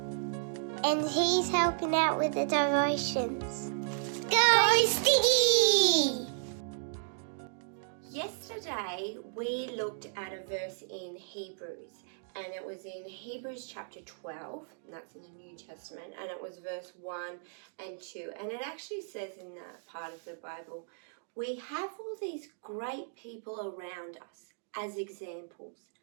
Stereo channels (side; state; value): left; silent; digital silence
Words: and he's helping out with the devotions. Go Sticky! Yesterday we looked at a verse in Hebrews, and it was in Hebrews chapter 12, and that's in the New Testament, and it was verse 1 and 2, and it actually says in that part of the Bible, we have all these great people around us as examples.